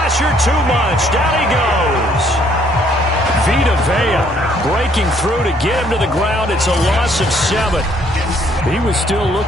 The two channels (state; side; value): normal; both; correlation 0.65